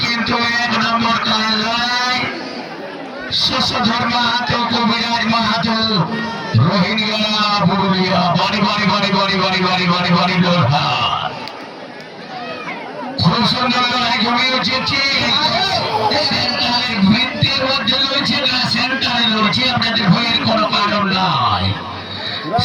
কিন্তু 1 নম্বর খেলার লড়াই শশধর মাহাতো, কবিরাজ মাহাতো, রোহিঙ্গা পুরুলিয়া। বাড়ি বাড়ি বাড়ি বাড়ি বাড়ি বাড়ি বাড়ি বাড়ি লড়াই, খুব সুন্দর লড়াই জমে উঠেছে। সেন্টারের বৃত্তের মধ্যে রয়েছে না, সেন্টারে রয়েছে, আপনাদের ভয়ের কোনো কারণ নাই।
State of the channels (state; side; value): identical; both; correlation 1.00